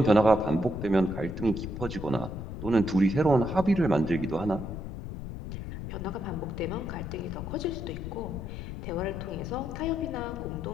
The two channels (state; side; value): noise; left; rumble, 7 dB below the sound